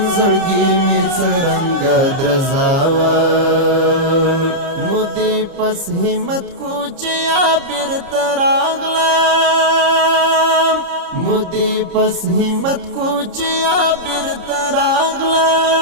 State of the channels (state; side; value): late; left; 30 ms